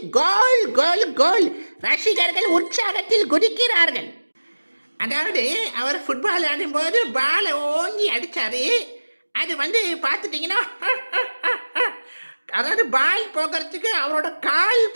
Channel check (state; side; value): inverted; both; correlation -1.00